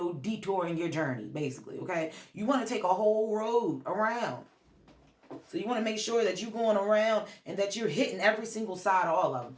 detour in your journey, basically, okay? You want to take a whole road around. So you want to make sure that you're going around and that you're hitting every single side of all of them.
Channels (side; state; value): both; identical; correlation 1.00